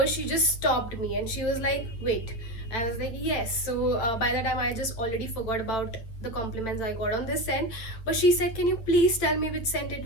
she just stopped me, and she was like, wait. I was like, yes. So by the time I just already forgot about the compliments I got on this scent. But she said, can you please tell me which scent it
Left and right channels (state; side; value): late; right; 8.8 ms